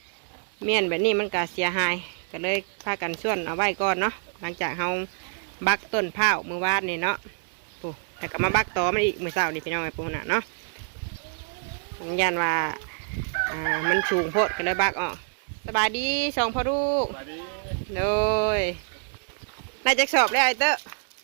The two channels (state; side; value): silent; left; 61 dB below the other